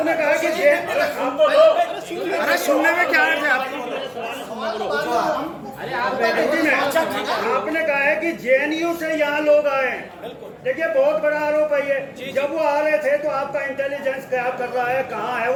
कहा कि अरे सुनने में क्या है आपको? आपने कहा है कि जेएनयू से यहाँ लोग आए हैं। देखिए, बहुत बड़ा आरोप है ये। जब वो आ रहे थे तो आपका इंटेलिजेंस क्या कर रहा है, कहाँ है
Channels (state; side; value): identical; both; correlation 1.00